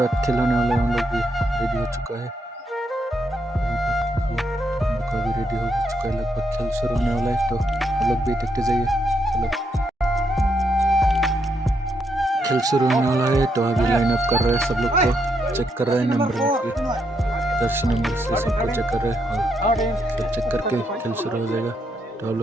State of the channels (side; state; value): both; normal; correlation 0.78